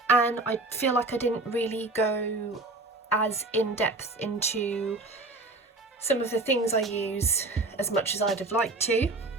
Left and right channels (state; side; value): quieter; left; 3.1 dB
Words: and I feel like I didn't really go as in-depth into some of the things I use as much as I'd have liked to.